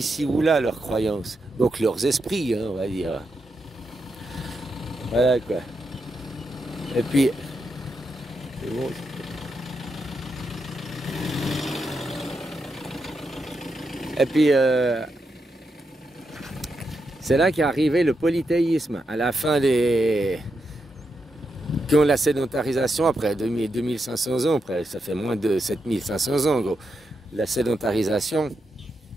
ou là, leurs croyances. Donc leurs esprits, hein, on va dire. Voilà quoi. Et puis, c'est bon. Et puis, c'est là qu'est arrivé le polythéisme, à la fin des... Quand la sédentarisation, après 2500 ans, après, ça fait moins de 7500 ans, gros. La sédentarisation,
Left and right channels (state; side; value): normal; both; correlation 0.84